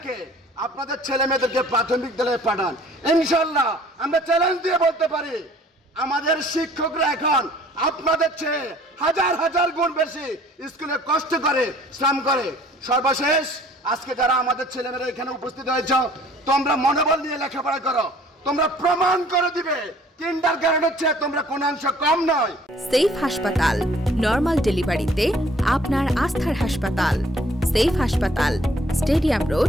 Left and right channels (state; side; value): normal; both; correlation 0.55